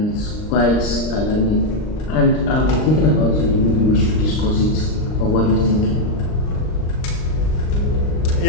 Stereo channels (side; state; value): right; late; 39 ms